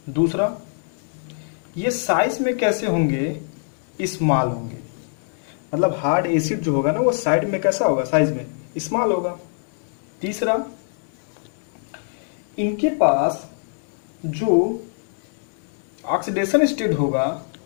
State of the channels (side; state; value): right; silent; 60 dB below the other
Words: दूसरा, ये साइज में कैसे होंगे, स्मॉल होंगे, मतलब हार्ड एसिड जो होगा ना वो साइड में कैसा होगा, साइज में स्मॉल होगा। तीसरा, इनके पास जो ऑक्सीडेशन स्टेट होगा,